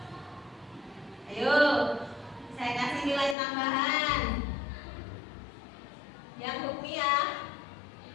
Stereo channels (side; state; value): right; drops out; at 3.4 s